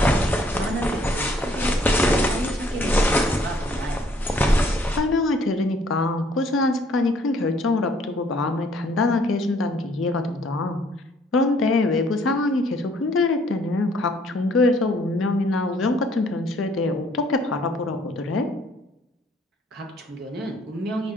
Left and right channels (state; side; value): normal; both; correlation 0.62